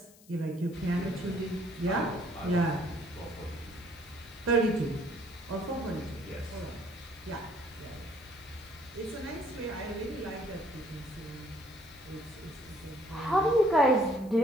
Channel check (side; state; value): left; noise; hiss, 24 dB below the sound